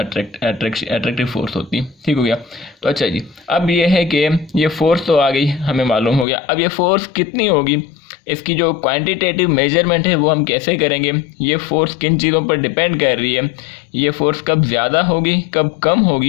फोर्स होती है, ठीक हो गया। तो अच्छा जी अब ये है कि ये फोर्स तो आ गई हमें मालूम हो गया, अब ये फोर्स कितनी होगी, इसकी जो क्वांटिटेटिव मेजरमेंट है वो हम कैसे करेंगे, ये फोर्स किन चीज़ों पर डिपेंड कर रही है, ये फोर्स कब ज़्यादा होगी कब कम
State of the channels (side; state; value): right; drops out; at 6.2 s